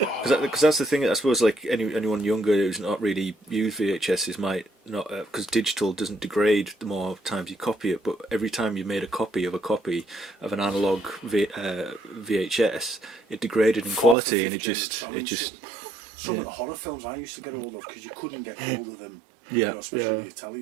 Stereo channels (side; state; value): left; drops out; at 14.2 s